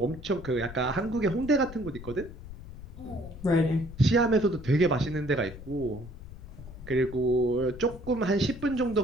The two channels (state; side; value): noise; left; rumble, 14 dB below the sound